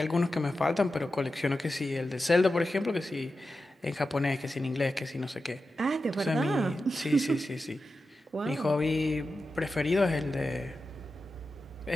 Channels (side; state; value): both; normal; correlation 0.91